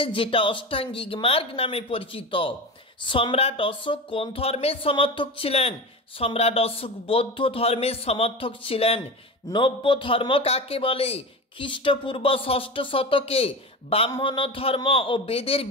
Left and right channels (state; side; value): normal; both; correlation 0.26